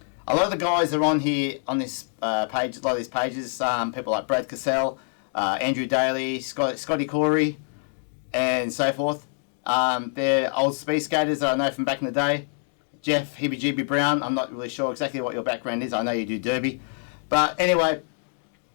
a lot of the guys are on here on this page. A lot of these pages, people like Brad Cassell, Andrew Daly, Scotty Corey, and so forth. They're old speed skaters that I know from back in the day. Jeff Heebie Brown, I'm not really sure exactly what your background is. I know you do derby, but anyway.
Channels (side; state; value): right; silent; 59 dB below the other